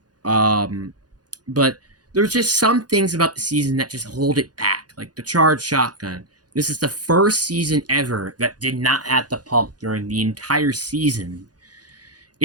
But there's just some things about the season that just hold it back, like the Charged Shotgun. This is the first season ever that did not have the pump during the entire season.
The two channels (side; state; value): left; late; 0.69 ms